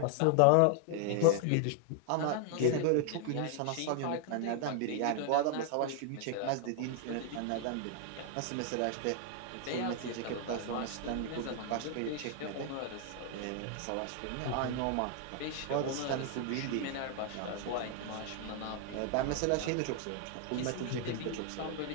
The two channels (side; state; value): both; different; correlation 0.00